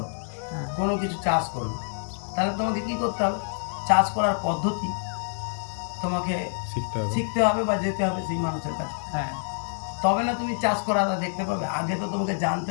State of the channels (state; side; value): silent; right; digital silence